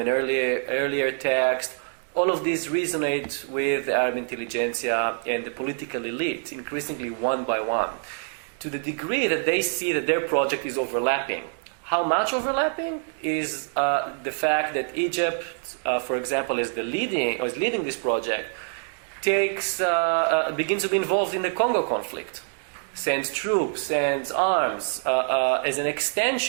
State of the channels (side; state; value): left; silent; 61 dB below the other